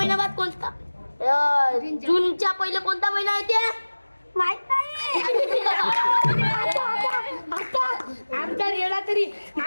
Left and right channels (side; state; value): both; inverted; correlation -1.00